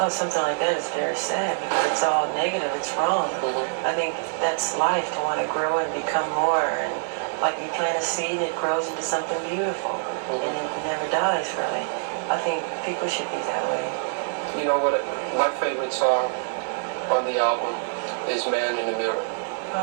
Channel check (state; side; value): silent; left; digital silence